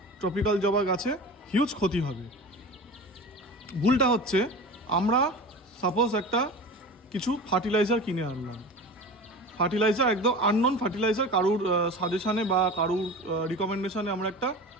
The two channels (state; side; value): normal; both; correlation 0.33